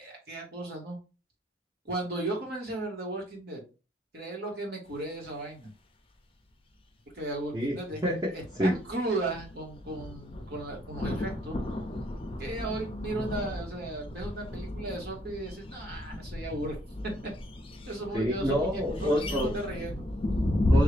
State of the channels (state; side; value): normal; both; correlation 0.67